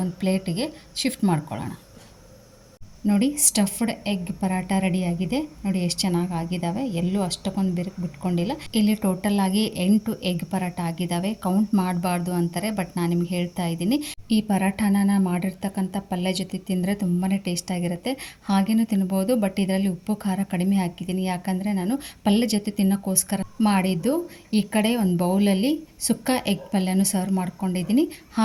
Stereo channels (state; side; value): identical; both; correlation 1.00